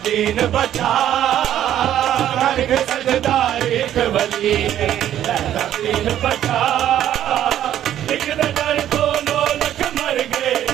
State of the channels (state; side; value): quieter; left; 11.4 dB